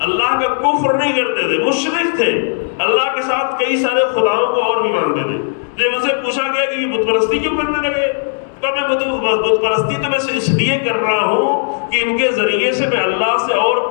اللہ کا کفر نہیں کرتے تھے، مشرک تھے، اللہ کے ساتھ کئی سارے خداؤں کو اور بھی مانتے تھے۔ جب ان سے پوچھا گیا کہ یہ بت پرستی کیوں کرنے لگے، تو میں بت پرستی تو میں اس لیے کر رہا ہوں کہ ان کے ذریعے سے میں اللہ سے اور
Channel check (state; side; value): silent; right; digital silence